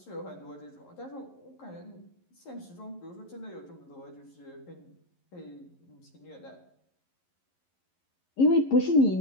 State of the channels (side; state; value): right; late; 11 ms